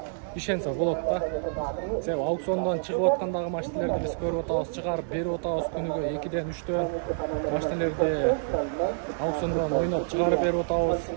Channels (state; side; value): silent; left; digital silence